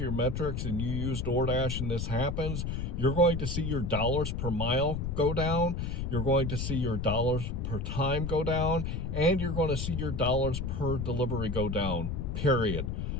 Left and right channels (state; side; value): noise; left; rumble, 3 dB below the sound